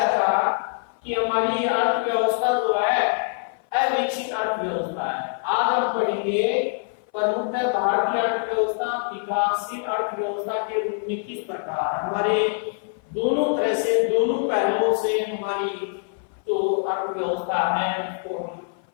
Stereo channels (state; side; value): silent; right; 57 dB below the other